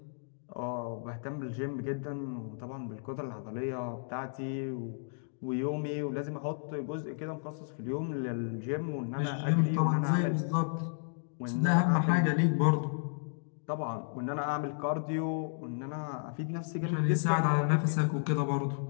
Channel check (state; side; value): silent; right; digital silence